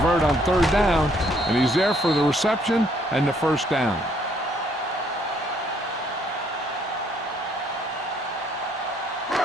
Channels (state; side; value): normal; both; correlation 0.67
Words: on third down, and he's there for the reception and the first down.